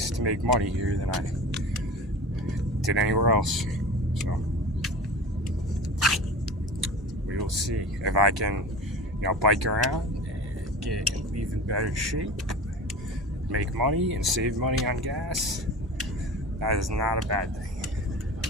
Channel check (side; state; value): both; normal; correlation 0.34